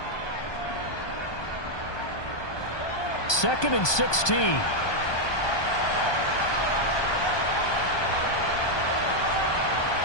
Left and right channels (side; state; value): right; late; 1.2 ms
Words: Second and 16.